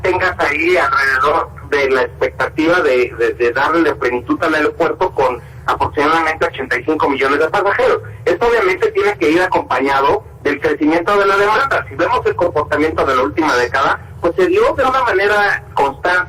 ahí alrededor de la expectativa de darle plenitud al aeropuerto con aproximadamente 85 millones de pasajeros. Esto obviamente tiene que ir acompañado del crecimiento de la demanda. Si vemos el comportamiento de la última década, pues se dio de una manera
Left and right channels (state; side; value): identical; both; correlation 1.00